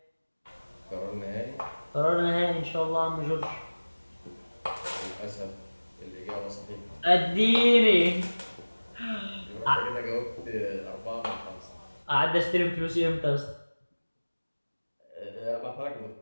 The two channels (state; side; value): inverted; both; correlation -1.00